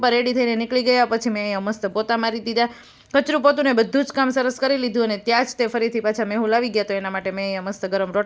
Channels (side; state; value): both; identical; correlation 1.00